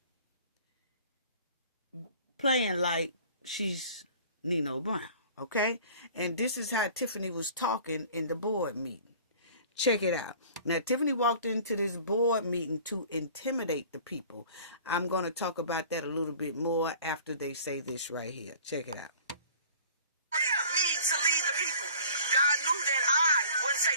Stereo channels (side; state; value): both; inverted; correlation -0.47